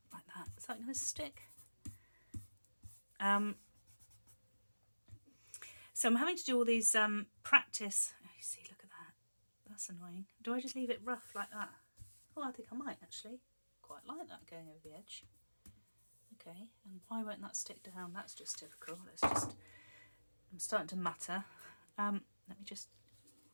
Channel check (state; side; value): inverted; both; correlation -1.00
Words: like that, is that going to stick? So I'm having to do all these practice. Oh, you see, look at that. That's annoying. Do I just leave it rough like that? Oh, I think I might actually. Quite like that going over the edge. Okay, and why won't that stick down? That's just typical. I'm starting to matter. Let me just